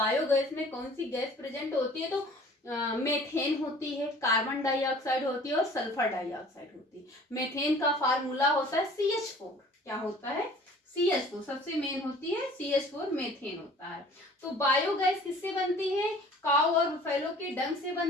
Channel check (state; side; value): normal; both; correlation 0.49